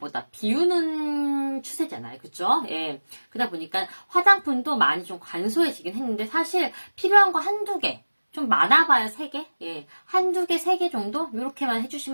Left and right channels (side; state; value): both; inverted; correlation -1.00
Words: 비우는 추세잖아요. 그쵸? 예. 그러다 보니까 화장품도 많이 좀 간소해지긴 했는데 사실 필요한 거 한두 개, 좀 많아봐야 3개? 예. 한두 개, 3개 정도? 이렇게만